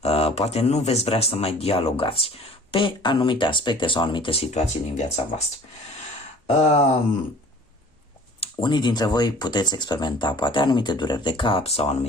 poate nu veți vrea să mai dialogați pe anumite aspecte sau anumite situații din viața voastră. Unii dintre voi puteți experimenta poate anumite dureri de cap sau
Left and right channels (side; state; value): both; normal; correlation 0.49